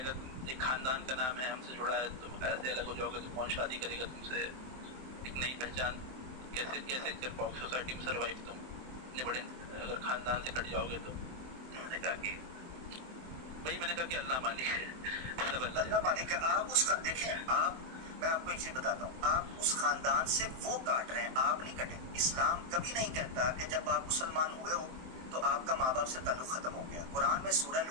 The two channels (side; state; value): left; late; 23 ms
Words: तुम एक खानदान का नाम है हमसे जुड़ा है, तुम ऐसे अलग हो जाओगे तो कौन शादी करेगा तुमसे, एक नई पहचान कैसे कैसे कर पाओगे सोसाइटी में सर्वाइव, तुम इतने बड़े अगर खानदान से कट जाओगे तो। मैंने कहा कि भाई, मैंने कहा कि अल्लाह मालिक है, सब अल्लाह मालिक है। आप उसका देखें, आप, मैं आपको एक चीज बताता हूँ, आप उस खानदान से वो काट रहे हैं, आप नहीं कटे। इस्लाम कभी नहीं कहता कि जब आप मुसलमान हुए हो तो आपका माँ बाप से ताल्लुक खत्म हो गया। कुरान में सूरह